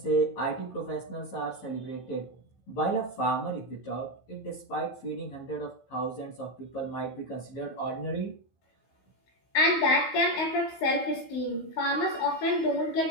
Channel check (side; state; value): right; late; 16 ms